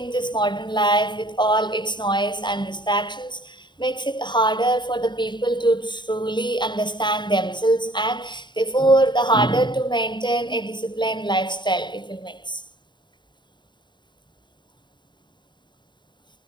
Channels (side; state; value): right; late; 0.22 ms